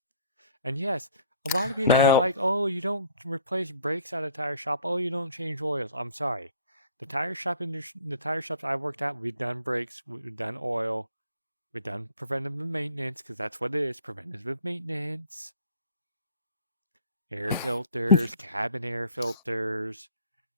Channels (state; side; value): inverted; both; correlation -0.53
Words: And yes, a lot of people are like, oh, you don't replace brakes at a tire shop. Oh, you don't change oils. I'm sorry. The tire shops I worked at, we've done brakes, we've done oil, we've done preventative maintenance, because that's what it is, preventative maintenance. Air filters, cabin air filters,